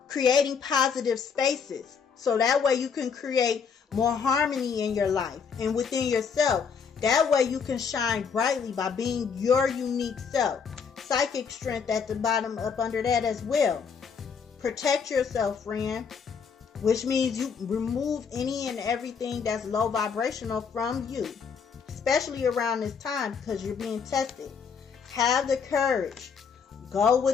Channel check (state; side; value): quieter; right; 6.2 dB